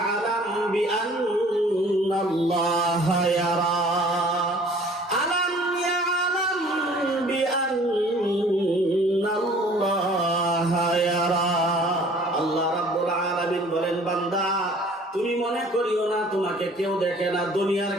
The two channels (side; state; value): both; normal; correlation 0.52